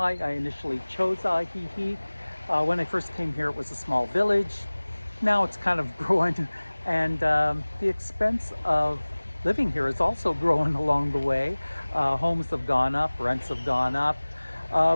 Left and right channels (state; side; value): inverted; both; correlation -1.00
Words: I initially chose Ajijic. When I first came here, it was a small village. Now it's kind of growing, and the expense of living here is also growing along the way. Homes have gone up, rents have gone up,